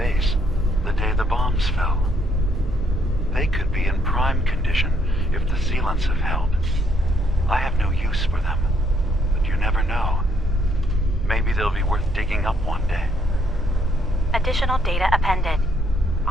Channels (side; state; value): both; normal; correlation 0.71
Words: the day the bombs fell. They could be in prime condition if the sealants have held. I have no use for them, but you never know. Maybe they'll be worth digging up one day. Additional data appended.